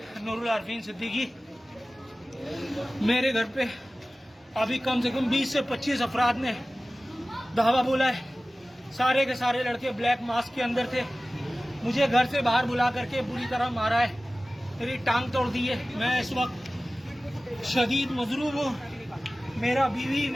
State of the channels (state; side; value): normal; both; correlation 0.97